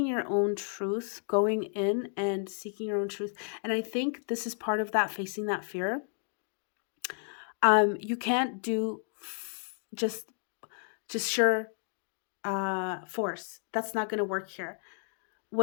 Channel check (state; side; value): silent; right; 56 dB below the other